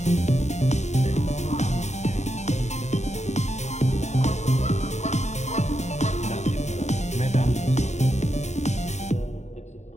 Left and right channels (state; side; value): late; right; 0.33 ms